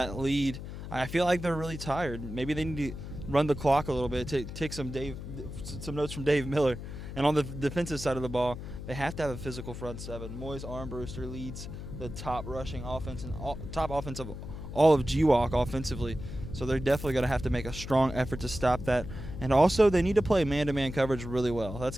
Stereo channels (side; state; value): left; noise; hum, 9 dB below the sound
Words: lead. I feel like they're really tired. Maybe they need to run the clock a little bit, take some notes from Dave Miller. And on the defensive side of the ball, they have to have a physical front 7. Moise Armbruster leads the top rushing offense and top offense of all of GWalk offensively. So they're definitely going to have to make a strong effort to stop that. And also, they need to play man-to-man coverage really well. That's